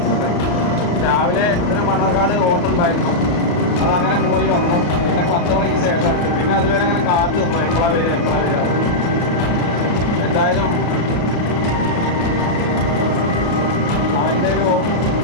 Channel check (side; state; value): right; late; 34 ms